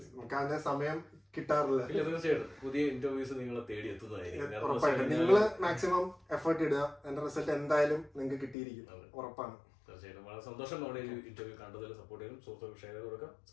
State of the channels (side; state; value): right; drops out; at 8.6 s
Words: നമുക്ക് അതിന്റെ സമയം കിട്ടാറില്ല. തീർച്ചയായിട്ടും പുതിയ ഇന്റർവ്യൂസ് നിങ്ങളെ തേടി എത്തുന്നതായിരിക്കും. ഉറപ്പായിട്ടും നിങ്ങള് മാക്സിമം എഫേർട്ട് ഇടുക. എന്റെ റിസൾട്ട് എന്തായാലും നിങ്ങൾക്ക് കിട്ടിയിരിക്കും, ഉറപ്പാണ്. തീർച്ചയായിട്ടും വളരെ സന്തോഷം. നമ്മുടെ ഒരു ഇന്റർവ്യൂ കണ്ടതിൽ സപ്പോർട്ട് ചെയ്യും. സുഹൃത്തുക്കൾ ഷെയർ ചെയ്ത് കൊടുക്കുക,